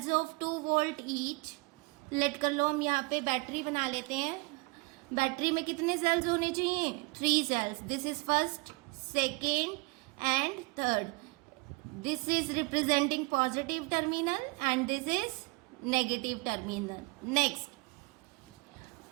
of 2 volt each. Let कर लो, हम यहाँ पे बैटरी बना लेते हैं. बैटरी में कितने सेल्स होने चाहिए 3 cells. This is first, second and third. This is representing positive terminal and this is negative terminal. Next,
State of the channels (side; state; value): left; quieter; 27.3 dB